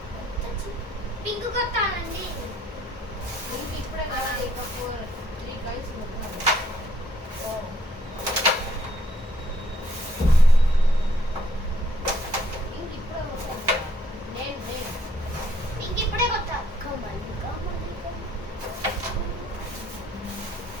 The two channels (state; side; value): normal; both; correlation 0.66